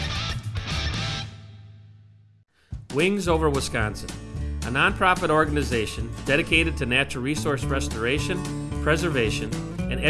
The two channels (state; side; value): identical; both; correlation 1.00